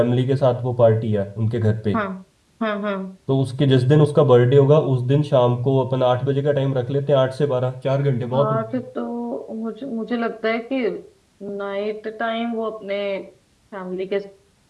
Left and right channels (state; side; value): identical; both; correlation 1.00